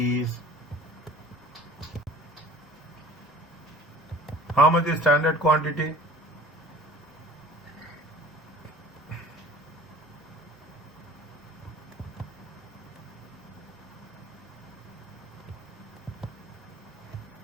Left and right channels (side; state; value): both; normal; correlation 0.45